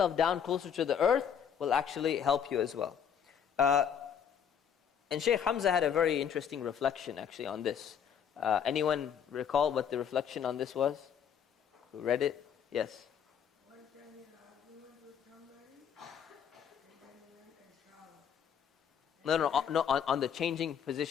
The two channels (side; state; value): right; quieter; 8.0 dB